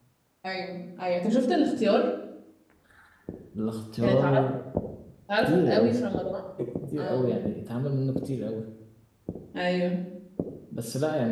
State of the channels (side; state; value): both; identical; correlation 1.00